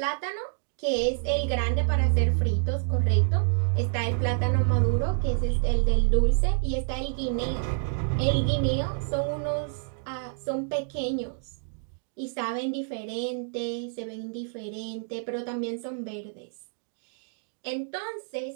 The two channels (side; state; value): left; silent; digital silence